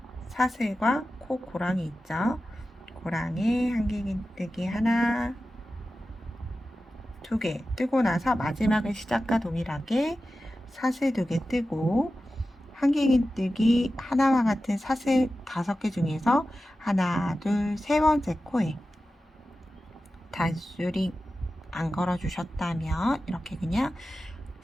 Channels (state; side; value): normal; both; correlation 0.93